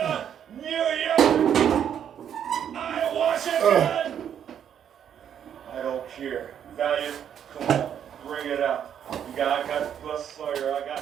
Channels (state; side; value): quieter; left; 9.0 dB